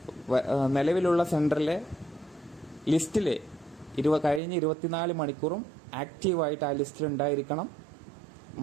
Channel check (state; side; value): drops out; left; at 4.4 s